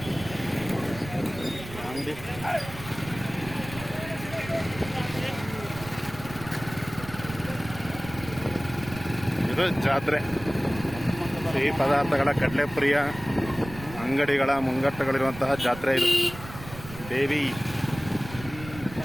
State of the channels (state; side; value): noise; right; rumble, 14 dB below the sound